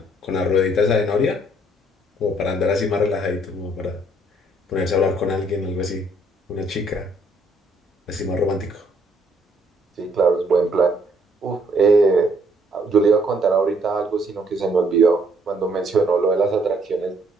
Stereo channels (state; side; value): normal; both; correlation 0.66